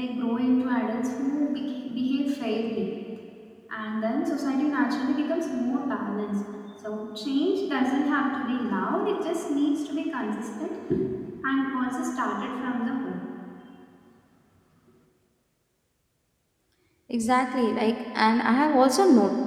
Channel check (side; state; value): both; identical; correlation 1.00